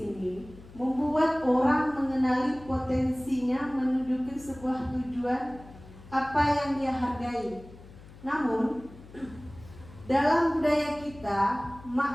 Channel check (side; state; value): left; noise; hum, 19 dB below the sound